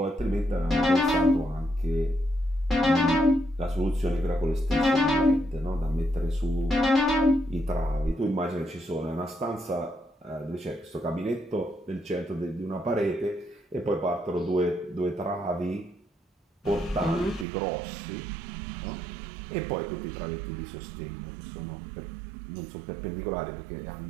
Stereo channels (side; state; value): left; drops out; at 17.4 s